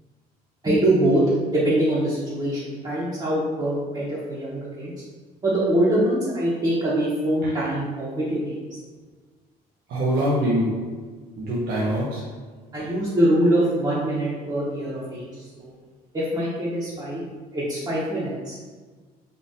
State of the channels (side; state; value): both; normal; correlation 0.62